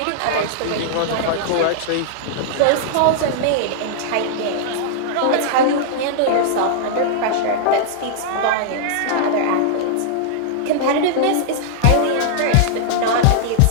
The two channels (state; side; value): different; both; correlation -0.01